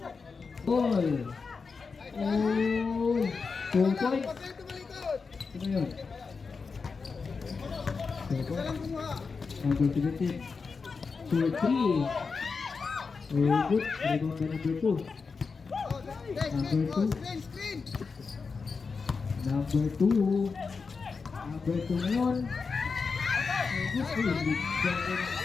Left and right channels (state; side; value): quieter; right; 4.9 dB